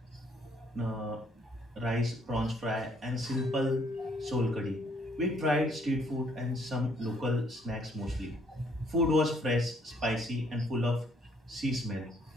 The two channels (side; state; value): both; normal; correlation 0.66